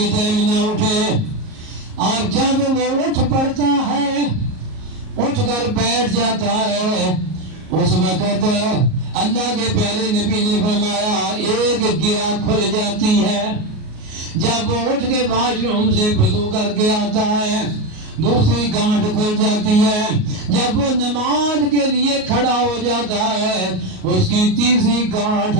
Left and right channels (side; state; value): left; late; 38 ms